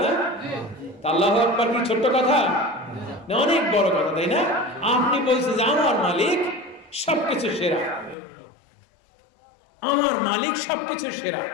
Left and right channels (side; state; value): right; drops out; at 8.2 s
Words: না? আল্লাহু আকবার কি ছোট্ট কথা না? অনেক বড় কথা, তাই না? আপনি বলছেন যে আমার মালিক সবকিছু সেরা, আমার মালিক সবকিছু সেরা।